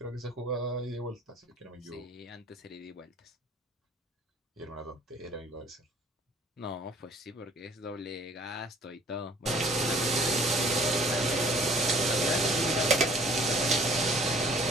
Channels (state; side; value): normal; both; correlation 0.54